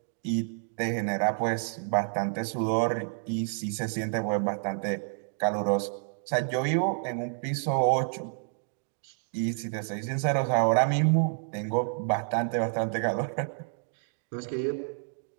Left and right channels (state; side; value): silent; left; 58 dB below the other